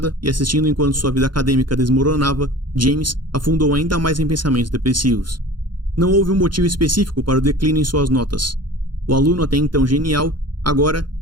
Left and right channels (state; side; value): late; left; 0.71 ms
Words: e assistindo enquanto sua vida acadêmica desmoronava, James afundou ainda mais em pensamentos depressivos. Não houve um motivo específico para o declínio em suas notas. O aluno até então genial, agora